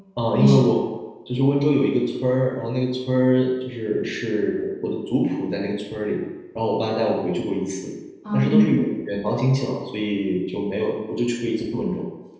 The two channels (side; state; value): both; identical; correlation 1.00